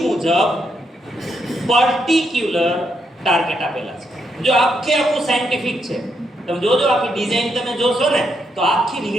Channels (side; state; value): both; normal; correlation 0.79